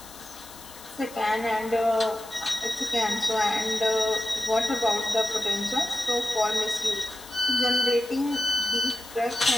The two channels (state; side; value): noise; left; hiss, 18 dB below the sound